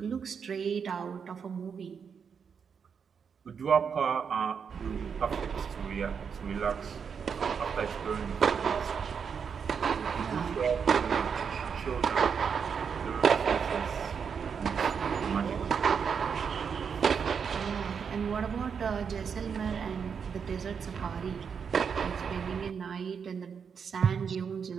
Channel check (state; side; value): quieter; left; 6.6 dB